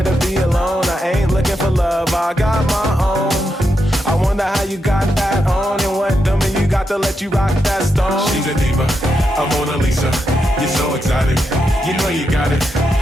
to be alone. I ain't looking for love, I got my own. I wonder how you got that on, and what dummy you got to let you rock that stone. She's a diva, a Mona Lisa. You're so exotic, you know you got it.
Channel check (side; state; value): both; normal; correlation 0.84